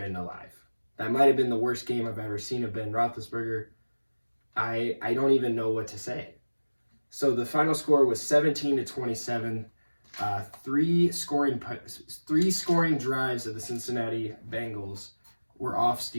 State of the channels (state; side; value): inverted; both; correlation -1.00